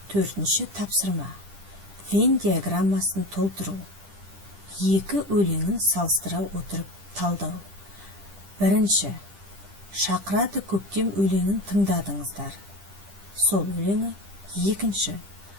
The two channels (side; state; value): left; late; 10 ms